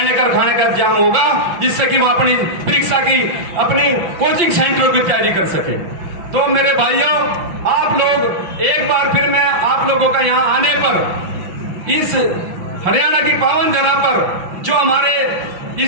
का खाने का इंतजाम होगा, जिससे कि वहां अपनी परीक्षा की, अपनी कोचिंग सेंटरों की तैयारी कर सके। तो मेरे भाइयों, आप लोग एक बार फिर मैं आप लोगों का यहाँ आने पर, इस हरियाणा की पावन धरा पर, जो हमारे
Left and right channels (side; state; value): left; late; 5.8 ms